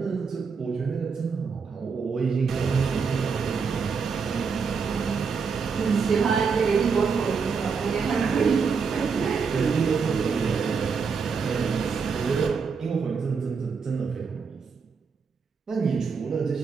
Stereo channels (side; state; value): left; quieter; 5.6 dB